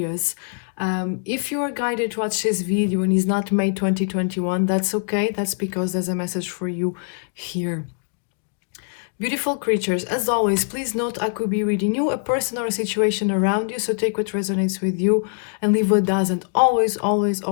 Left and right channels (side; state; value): right; silent; digital silence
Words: If you are guided to watch this video and it's not May 2021, that's okay. That's because there's a message for you here. Beautiful creatures, as always, please note I could be reading you, a person or a situation around you, so take what resonates with you and leave what doesn't. Always, always,